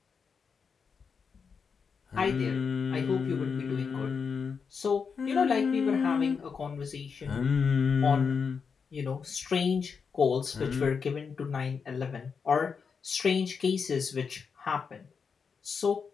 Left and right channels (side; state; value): right; quieter; 5.8 dB